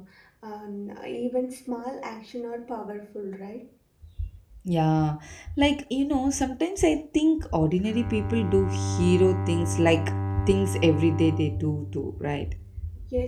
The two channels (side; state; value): both; identical; correlation 1.00